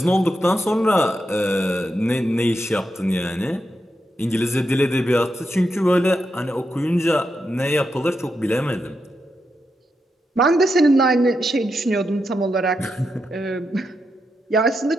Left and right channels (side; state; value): both; normal; correlation 0.85